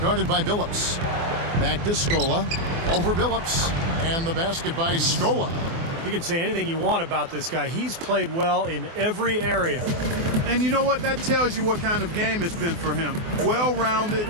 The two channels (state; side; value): late; left; 24 ms